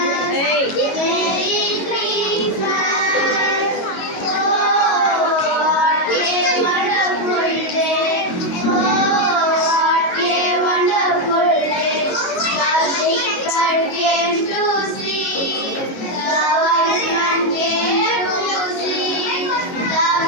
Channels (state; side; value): late; right; 22 ms